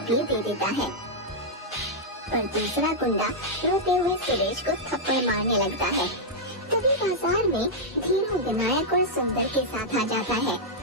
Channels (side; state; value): both; normal; correlation -0.06